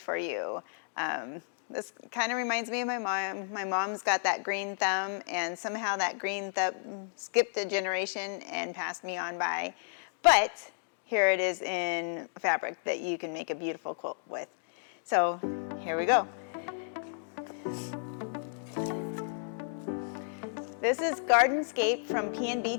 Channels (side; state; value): right; silent; digital silence